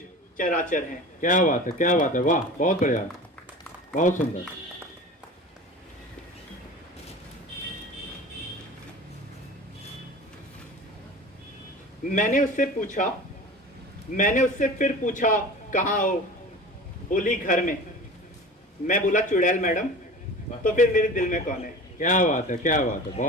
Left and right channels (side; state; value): both; normal; correlation 0.36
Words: चराचर हैं। क्या बात है, क्या बात है, वाह, बहुत बढ़िया, बहुत सुंदर। मैंने उससे फिर पूछा कहाँ हो। बोली घर में। मैं बोला चुड़ैल मैडम। तो फिर मेरे दिल में कौन है। क्या बात है, क्या बात है,